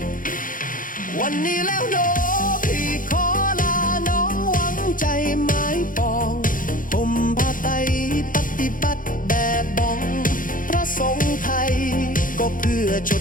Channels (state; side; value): late; right; 0.39 ms